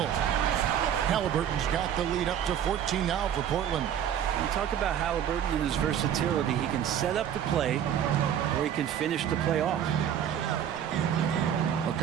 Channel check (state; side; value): quieter; left; 9.5 dB